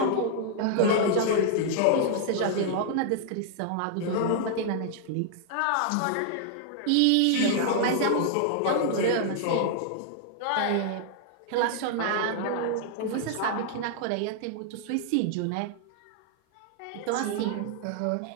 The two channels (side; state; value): both; different; correlation 0.00